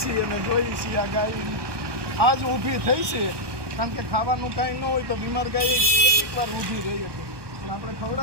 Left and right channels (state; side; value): late; left; 1.2 ms